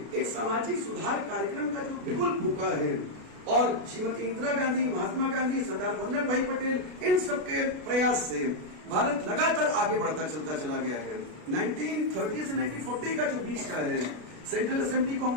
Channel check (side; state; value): left; late; 33 ms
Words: एक सामाजिक सुधार कार्यक्रम का जो बिगुल फूका है, और श्रीमती इंदिरा गांधी, महात्मा गांधी, सरदार वल्लभ भाई पटेल, इन सबके प्रयास से भारत लगातार आगे बढ़ता चलता चला गया है। 1930 से 1940 का जो बीच का है, सेंट्रल असेंबली